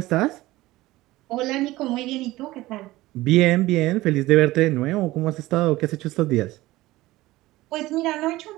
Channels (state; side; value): quieter; left; 18.1 dB